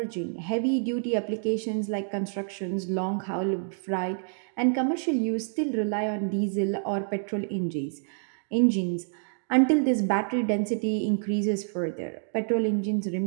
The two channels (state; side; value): silent; left; digital silence